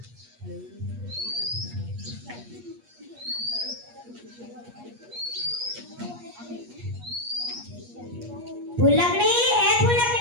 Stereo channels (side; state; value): left; late; 8.4 ms